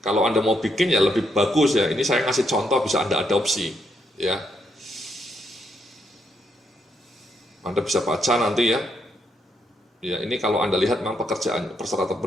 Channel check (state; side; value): normal; both; correlation 0.77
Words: Kalau Anda mau bikin ya lebih bagus ya. Ini saya ngasih contoh, bisa Anda adopsi ya. Anda bisa baca nanti ya. Ya, ini kalau Anda lihat memang pekerjaan persyaratan